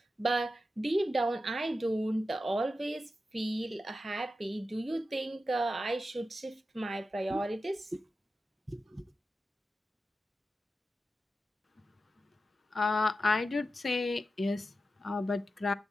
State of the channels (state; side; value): normal; both; correlation 0.91